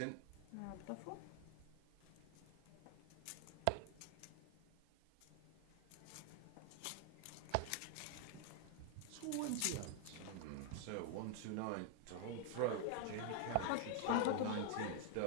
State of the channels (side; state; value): both; different; correlation 0.00